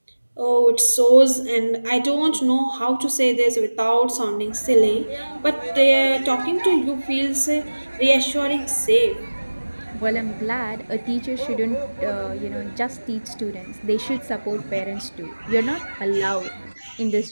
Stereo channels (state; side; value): inverted; both; correlation -1.00